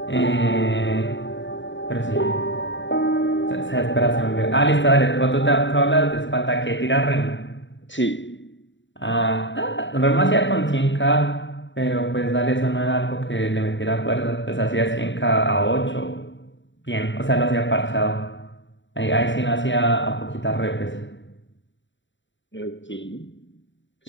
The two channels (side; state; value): right; late; 0.54 ms